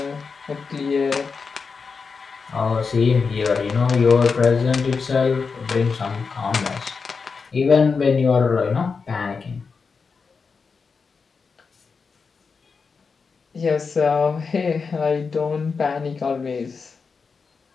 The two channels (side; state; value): right; quieter; 5.1 dB